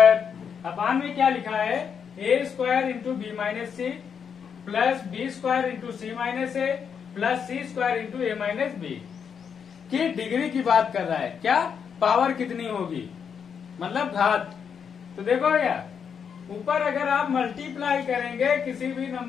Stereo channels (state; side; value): quieter; right; 7.0 dB